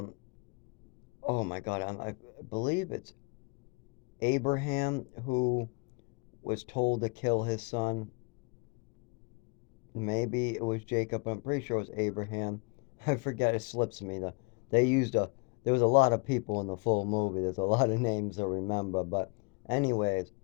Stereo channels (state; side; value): quieter; right; 31.1 dB